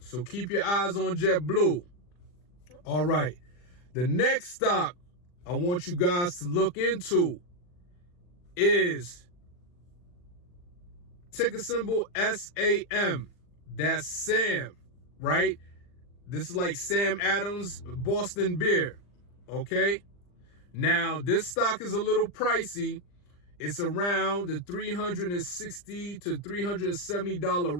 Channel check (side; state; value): right; late; 40 ms